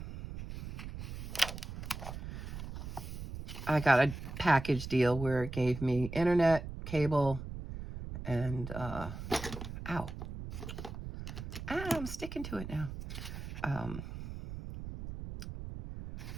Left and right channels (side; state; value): right; noise; rumble, 9 dB below the sound